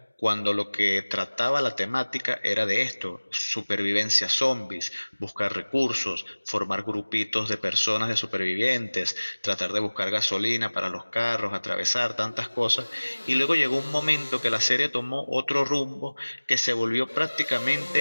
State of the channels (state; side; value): inverted; both; correlation -1.00